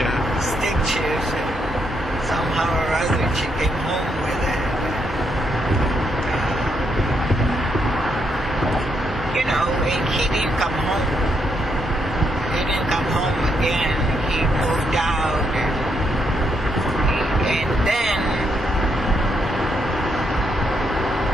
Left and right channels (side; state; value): both; normal; correlation 0.77